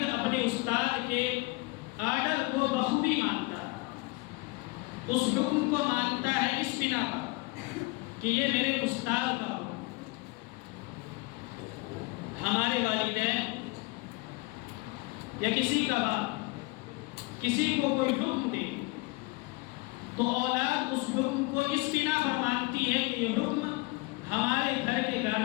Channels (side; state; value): right; quieter; 24.2 dB